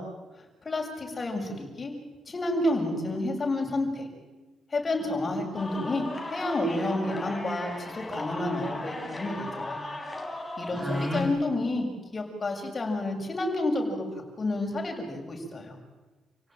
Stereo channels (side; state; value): both; normal; correlation 0.85